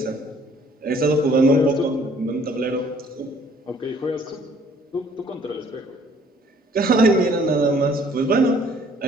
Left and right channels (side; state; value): both; normal; correlation 0.58